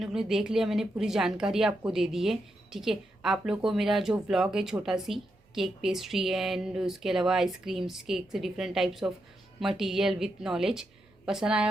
ने देख लिया, मैंने पूरी जानकारी आपको दे दी है, ठीक है। आप लोग को मेरा जो व्लॉग है छोटा सी केक पेस्ट्री एंड उसके अलावा आइसक्रीम्स केक से different types of material with knowledge पसंद आया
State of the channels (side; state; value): both; normal; correlation 0.84